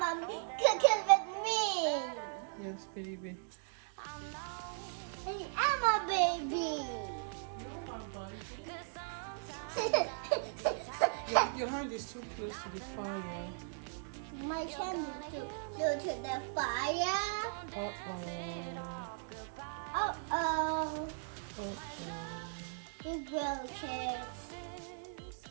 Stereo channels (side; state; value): left; silent; digital silence